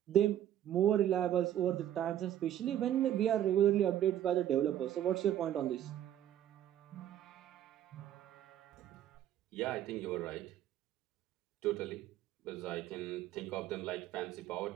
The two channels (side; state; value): left; quieter; 11.4 dB